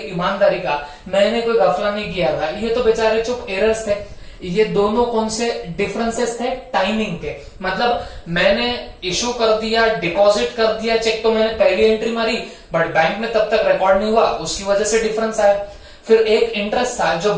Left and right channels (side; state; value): both; identical; correlation 1.00